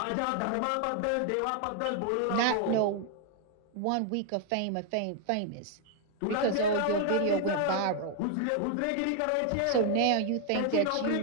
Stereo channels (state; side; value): different; both; correlation 0.00